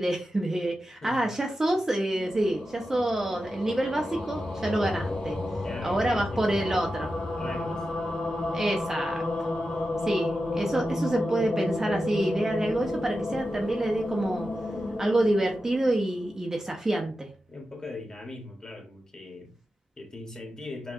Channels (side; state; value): both; normal; correlation 0.91